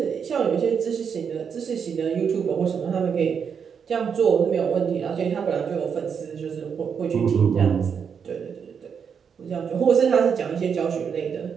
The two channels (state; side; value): quieter; left; 6.8 dB